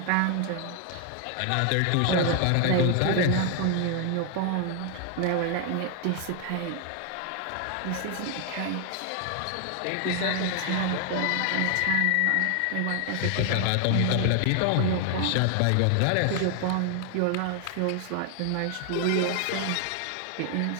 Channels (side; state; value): both; different; correlation 0.00